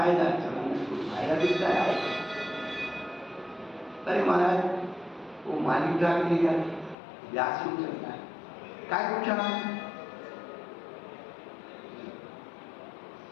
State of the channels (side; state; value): right; drops out; at 7.0 s